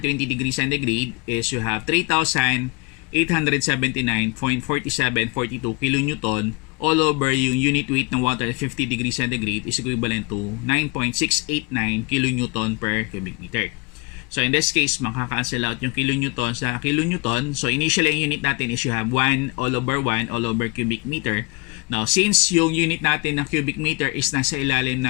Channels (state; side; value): quieter; right; 29.3 dB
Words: 20 degrees centigrade is you have 3,879.4742 kilonewton all over yung unit weight ng water at 50 degrees centigrade is equivalent to 9.689 kilonewton per cubic meter. So in this case, makaka-cancel out yung kilonewton sa kilonewton. So initially, ang unit natin is you have 1 all over cubic meter. Now, since yung unit natin ng cubic meter is nasa ilalim